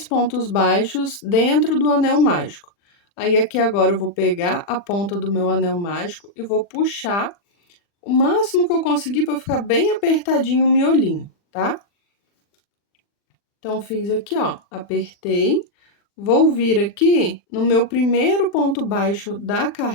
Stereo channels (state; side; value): late; right; 40 ms